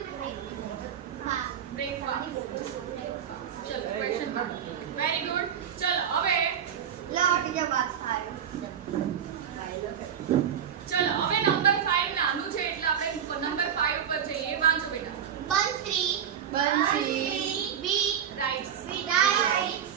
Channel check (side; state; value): left; quieter; 8.8 dB